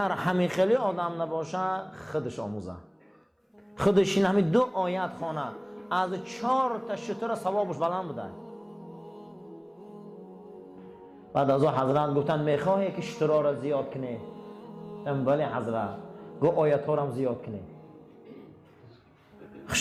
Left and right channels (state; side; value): identical; both; correlation 1.00